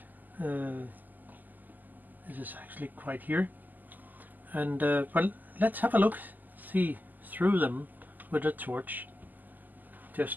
This is actually quite here, and well, let's have a look, see through them with a torch,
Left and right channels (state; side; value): late; left; 0.085 ms